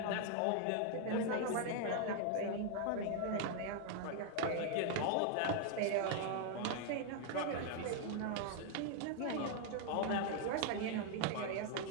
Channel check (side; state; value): both; different; correlation 0.00